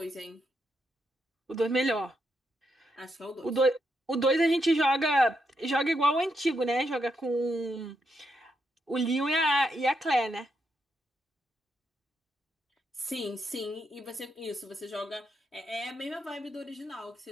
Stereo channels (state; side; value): normal; both; correlation 0.81